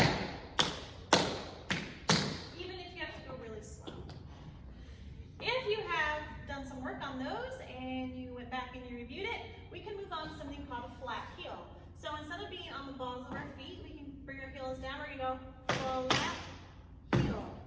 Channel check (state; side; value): identical; both; correlation 1.00